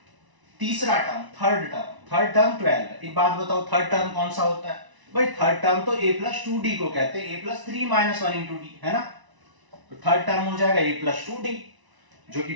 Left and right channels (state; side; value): late; left; 1.0 ms